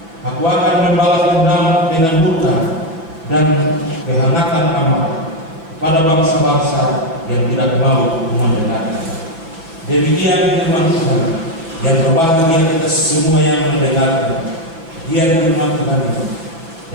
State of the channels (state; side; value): late; left; 6.1 ms